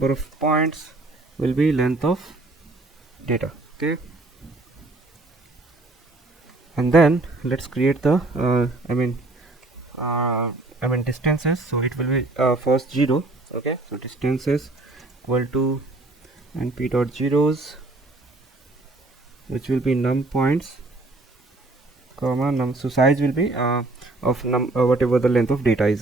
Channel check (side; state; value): left; quieter; 3.0 dB